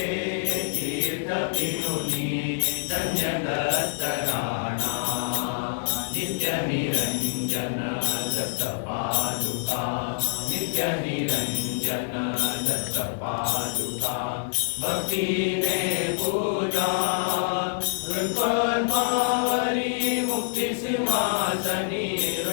तीर्थ पिरुनी धन्य दत्त राणा नित्य निरंजन दत्त पादुका नित्य निरंजन दत्त पादुका भक्तीने पूजा हृत्पद्मावरी मुक्ती सिंहासनी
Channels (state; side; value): silent; right; 61 dB below the other